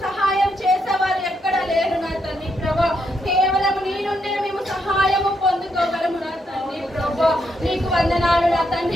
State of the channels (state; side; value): normal; both; correlation 0.78